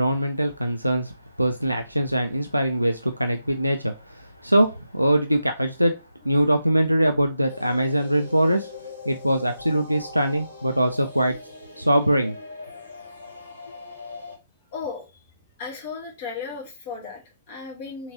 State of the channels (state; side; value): inverted; both; correlation -0.87